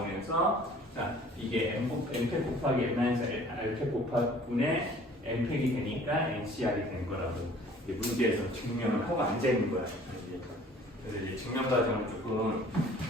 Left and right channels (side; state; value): both; normal; correlation 0.52